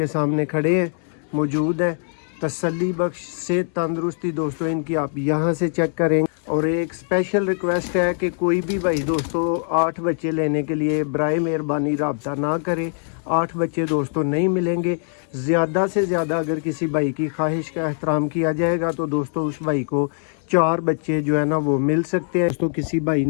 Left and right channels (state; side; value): silent; right; digital silence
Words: सामने खड़े हैं, मौजूद है। तसल्ली बख्श से तंदुरुस्ती दोस्तों इनकी आप यहाँ से चेक करें। और एक स्पेशल रिक्वेस्ट है कि कोई भी भाई दोस्तों 8 बच्चे लेने के लिए बराए मेहरबानी रब्ता ना करें। 8 बच्चे दोस्तों नहीं मिलेंगे। ज़्यादा से ज़्यादा अगर किसी भाई की ख्वाहिश का एहतराम किया जाएगा तो दोस्तों उस भाई को 4 बच्चे जो है ना वो मिल सकते हैं। दोस्तों किसी भाई